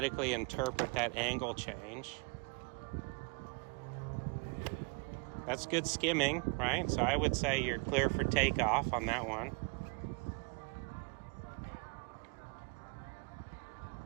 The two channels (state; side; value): quieter; left; 33.8 dB